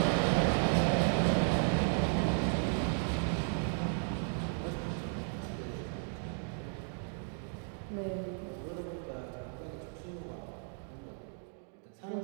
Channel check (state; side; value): silent; left; 55 dB below the other